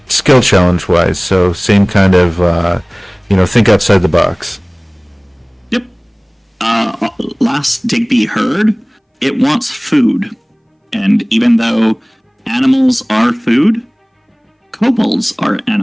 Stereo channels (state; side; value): identical; both; correlation 1.00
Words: skill challenge wise. So same kind of, think outside the box. Yep. Last Digby heard, it wants food. And even though animals are food, kobolds are